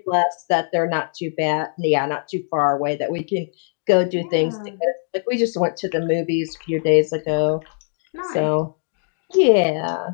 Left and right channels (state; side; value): silent; right; digital silence